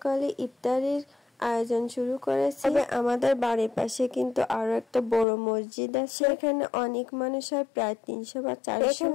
ইফতারির আয়োজন শুরু করেছে। তবে আমাদের বাড়ির পাশে কিন্তু আরো একটা বড় মসজিদ আছে, এখানে অনেক মানুষ হয়, প্রায় 300 বা 400।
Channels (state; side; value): drops out; right; at 5.2 s